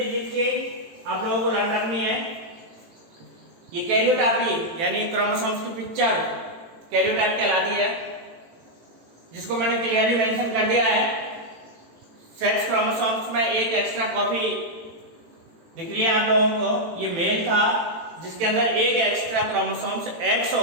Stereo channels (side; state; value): left; late; 18 ms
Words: की आप लोगों को लर्न रखनी है। ये कैरियोटाइपी यानी क्रोमोसोम्स की पिक्चर कैरियोटाइप कहलाती है, जिसको मैंने क्लियरली मेंशन कर दिया है। सेक्स क्रोमोसोम्स में एक एक्स्ट्रा कॉपी दिख रही है आप लोगों को, ये मेल था जिसके अंदर एक एक्स्ट्रा क्रोमोसोम्स एक्स